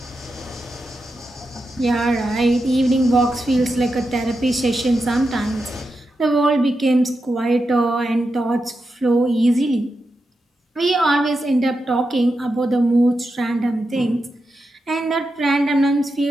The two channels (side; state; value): both; normal; correlation 0.88